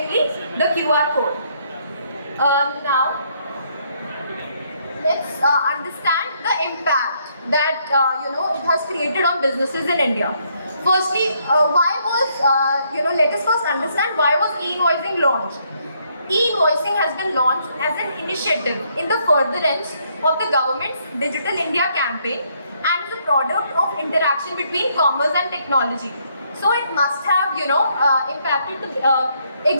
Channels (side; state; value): both; inverted; correlation -0.71